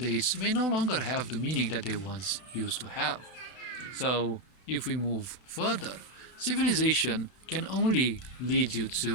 may no longer have the meaning that they once used to have. So, if we move further, civilization can only lead you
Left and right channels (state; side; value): late; right; 32 ms